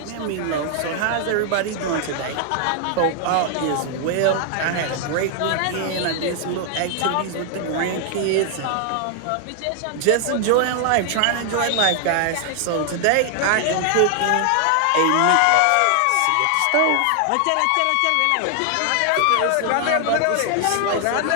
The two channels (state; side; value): different; both; correlation 0.00